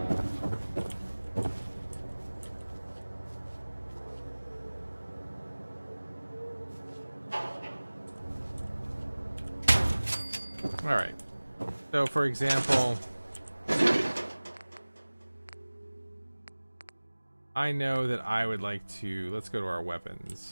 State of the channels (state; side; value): inverted; both; correlation -1.00